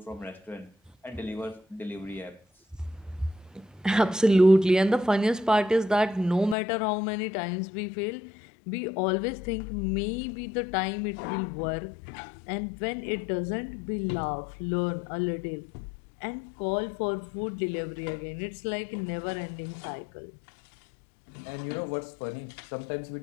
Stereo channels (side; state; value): right; drops out; at 6.6 s